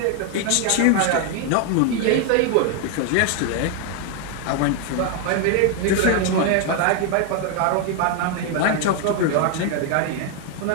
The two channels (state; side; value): different; both; correlation 0.01